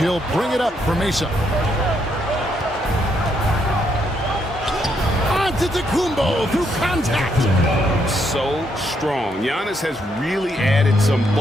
bring it up for Mesa. Antetokounmpo through contact. So strong. Giannis has really added some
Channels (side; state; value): both; normal; correlation 0.75